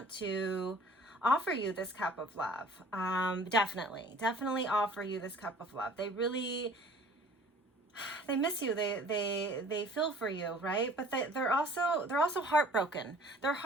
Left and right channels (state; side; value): normal; both; correlation 0.51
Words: to offer you this cup of love. Definitely offer you this cup of love. They miss you, they feel for you, right? But they're also heartbroken. They're